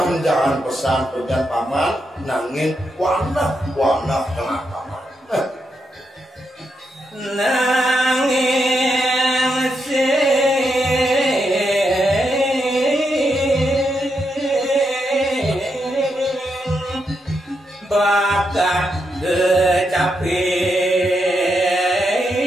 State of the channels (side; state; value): both; normal; correlation 0.82